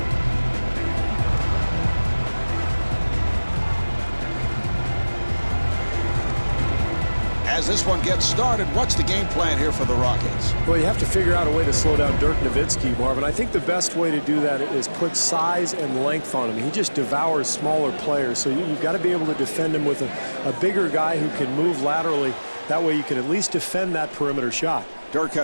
As this one gets started, what's the game plan here for the Rockets? Well, you have to figure out a way to slow down Dirk Nowitzki, Marvin. I think the best way to do that is put size and length on him. He just devours smaller players, so you've got to be able to defend him with a bigger guy who can move laterally. That way you can at least defend that perimeter shot. Dirk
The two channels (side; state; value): both; inverted; correlation -1.00